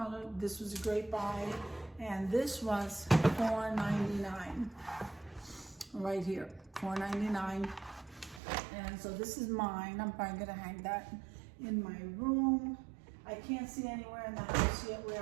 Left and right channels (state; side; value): drops out; left; at 8.4 s